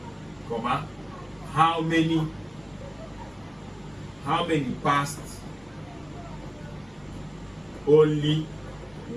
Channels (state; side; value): noise; left; rumble, 29 dB below the sound